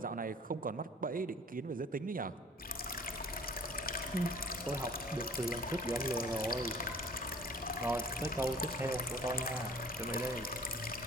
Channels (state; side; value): normal; both; correlation 0.49